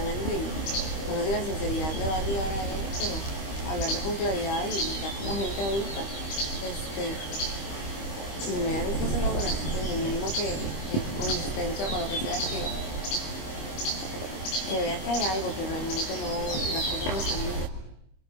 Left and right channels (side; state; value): right; late; 25 ms